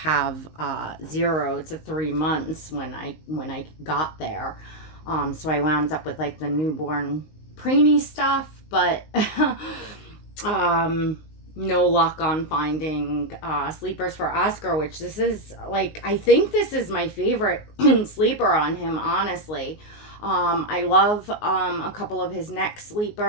0 to 3 months when I got there. So I wound up with like the newborn preemie stuff, but no luck on finding sleepers for Oscar, which this is like, I think this is my favorite sleeper on him, honestly. I love a couple of his neck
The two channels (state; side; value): late; right; 19 ms